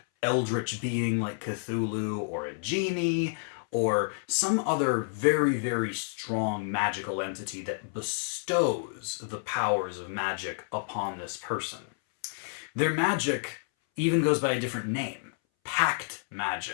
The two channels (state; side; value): silent; right; 58 dB below the other